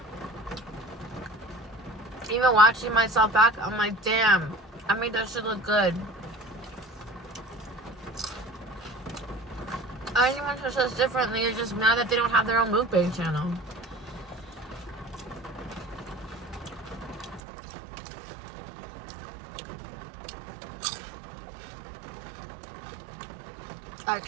Even watching myself back, I'm like, damn, I made that shit look good. Anyone who says differently is just mad that they don't have their own mukbang channel. I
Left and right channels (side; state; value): left; drops out; at 17.4 s